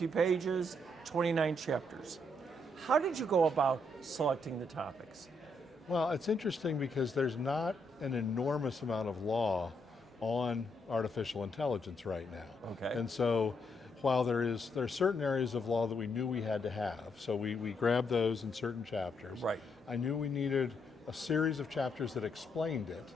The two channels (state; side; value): normal; both; correlation 0.76